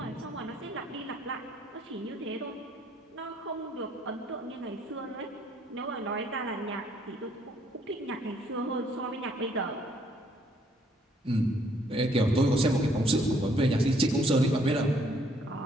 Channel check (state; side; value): normal; both; correlation 0.66